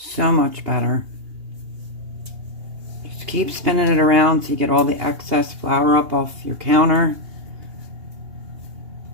much better. Just keep spinning it around so you get all the excess flour up off your counter.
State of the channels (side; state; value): left; late; 2.8 ms